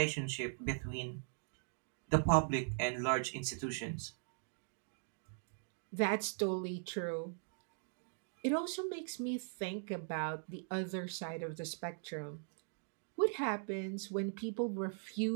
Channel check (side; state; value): left; silent; digital silence